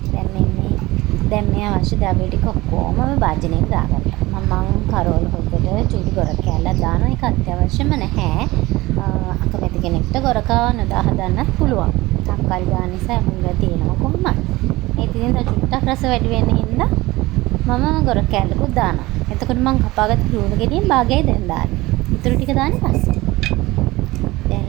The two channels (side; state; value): left; quieter; 19.9 dB